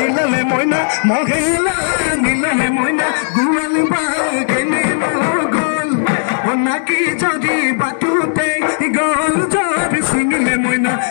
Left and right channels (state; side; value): silent; right; digital silence